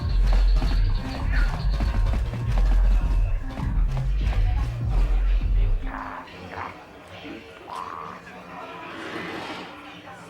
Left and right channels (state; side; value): identical; both; correlation 1.00